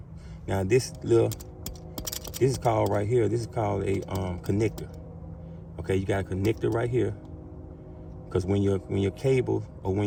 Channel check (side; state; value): both; identical; correlation 1.00